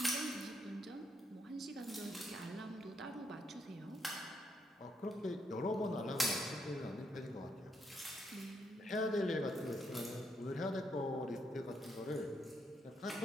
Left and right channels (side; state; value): both; normal; correlation 0.77